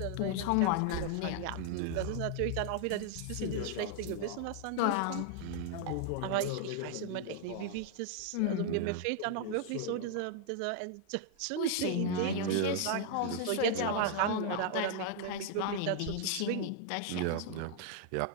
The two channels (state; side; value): different; both; correlation 0.00